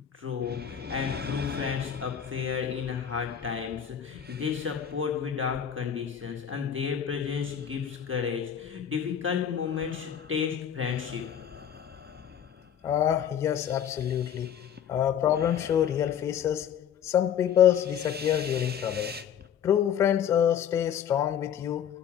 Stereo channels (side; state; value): right; quieter; 8.9 dB